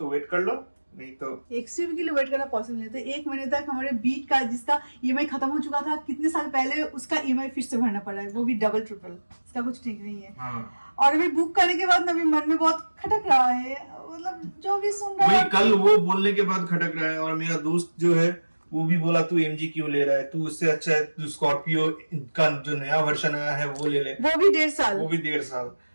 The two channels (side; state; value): both; inverted; correlation -1.00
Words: वेट कर लो, नहीं तो XUV के लिए वेट करना पॉसिबल नहीं। तो 1 महीने तक हमारे बीट का, जिसका EMI खत्म हो चुका था कितने साल पहले, उसका EMI फिर से भरना पड़ा है, वो भी डबल ट्रिपल। इसका कुछ ठीक नहीं है। हाँ। और अभी बुक करने के बाद अभी मन में बहुत खटक रहा है, मतलब जो भी सुन रहा है। कल वो बोलने के बाद खटक रहा है, और मेरा दोस्त जो है वो भी बोला तू MG क्यों ले रहा है, तू उससे अच्छा है तू स्कॉर्पियो का जो नया वर्जन आया है वो ले ले, वो भी 1.5 साल।